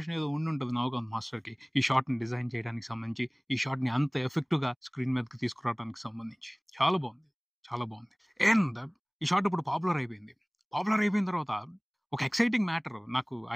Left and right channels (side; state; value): both; identical; correlation 1.00